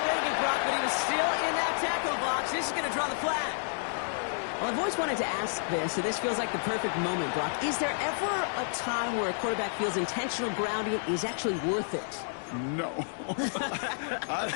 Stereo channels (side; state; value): right; silent; digital silence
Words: rid of it, Brock, but he was still in that tackle box. This is going to draw the flag. Well, I've always wanted to ask this, so this feels like the perfect moment, Brock. Is there ever a time where a quarterback feels intentional grounding is actually worth it? No. I